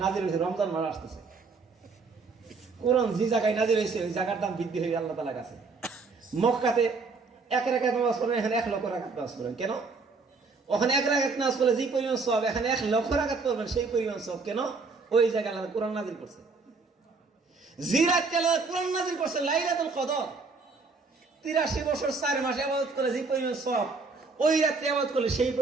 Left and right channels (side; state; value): left; quieter; 4.2 dB